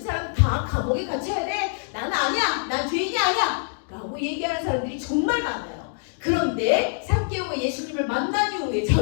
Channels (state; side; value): silent; right; digital silence